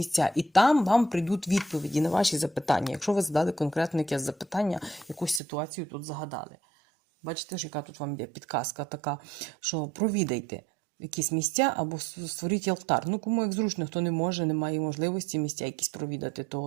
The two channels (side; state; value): left; drops out; at 5.4 s